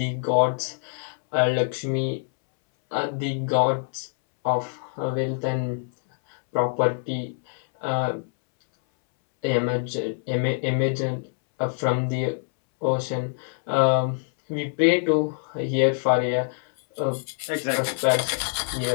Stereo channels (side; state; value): right; silent; 62 dB below the other